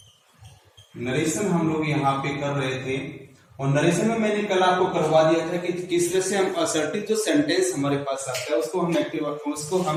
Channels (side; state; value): both; identical; correlation 1.00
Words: Narration हम लोग यहाँ पे कर रहे थे और नरेशन में मैंने कल आपको करवा दिया था कि किस तरह से हम असर्टिव जो सेंटेंस हमारे पास आता है उसको